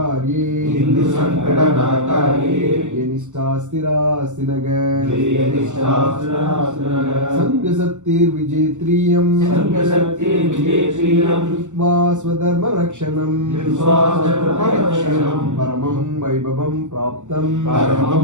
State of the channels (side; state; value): left; late; 0.84 ms